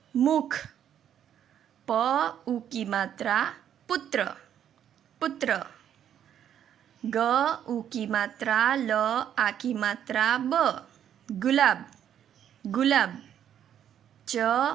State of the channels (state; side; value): quieter; left; 9.8 dB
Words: मुख। प ऊ की मात्रा पुत्र, पुत्र। ग ऊ की मात्रा ल आ की मात्रा ब, गुलाब, गुलाब।